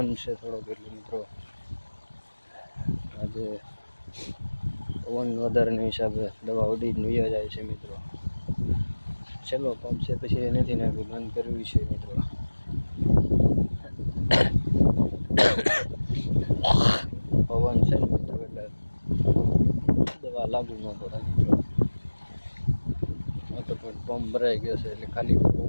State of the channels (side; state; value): both; inverted; correlation -1.00